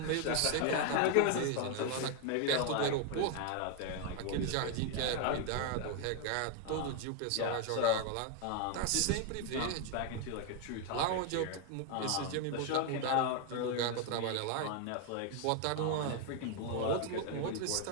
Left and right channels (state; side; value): different; both; correlation 0.01